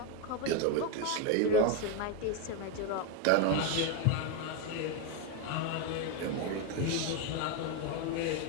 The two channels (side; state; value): both; different; correlation 0.02